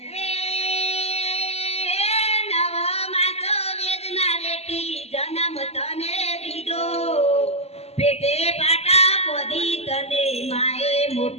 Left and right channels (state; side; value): late; right; 0.30 ms